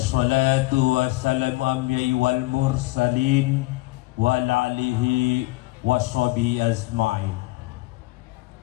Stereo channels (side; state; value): right; quieter; 21.2 dB